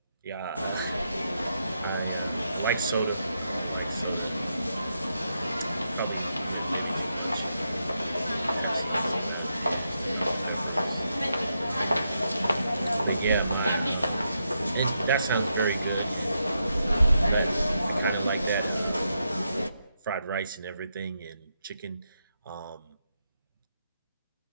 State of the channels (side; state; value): both; inverted; correlation -0.83